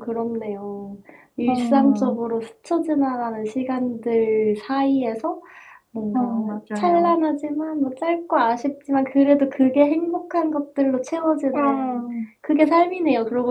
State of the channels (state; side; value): identical; both; correlation 1.00